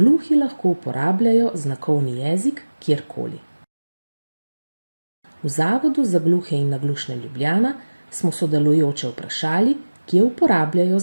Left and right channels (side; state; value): both; inverted; correlation -1.00